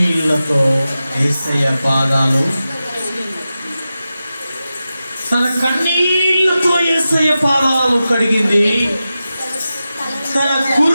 యేసయ్య పాదాలు, తన కన్నీళ్లతో యేసయ్య పాదాలు కడిగింది. తన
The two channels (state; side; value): inverted; both; correlation -0.93